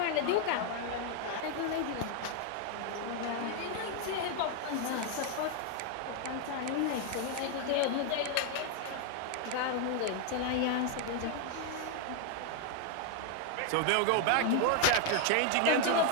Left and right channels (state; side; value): different; both; correlation 0.00